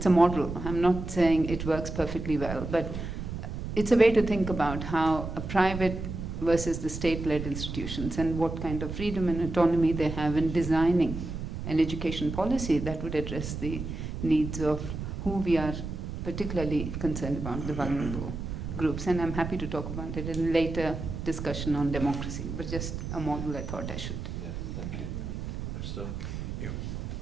a model. I'm not saying it works perfectly well, but it's a way to think about how a private versus the state-led institutions and what kind of freedom and autonomy they have in designing an education policy that would address the needs of who we are particularly concerned about, the vulnerable groups. And I'm happy to talk about it in a later discussion on democracy, but just a model I thought I should. Yeah, thank you. Christoph?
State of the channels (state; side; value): noise; right; rumble, 6 dB below the sound